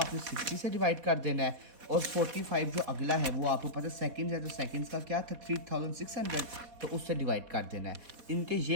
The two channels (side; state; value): left; late; 4.2 ms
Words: 60 से डिवाइड कर देना है। और 45 जो अगला है वो आपको पता है सेकंड्स है, तो सेकंड्स का क्या था 3600, तो उससे डिवाइड कर देना है। इनके ये